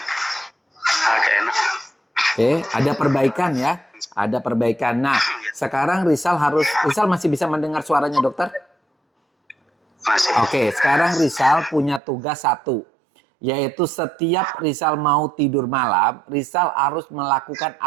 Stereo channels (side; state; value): left; drops out; at 12.0 s